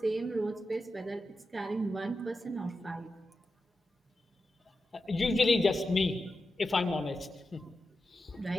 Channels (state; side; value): normal; both; correlation 0.90